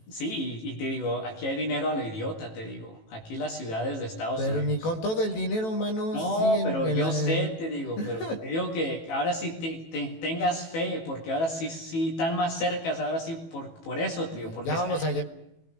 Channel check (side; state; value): right; late; 18 ms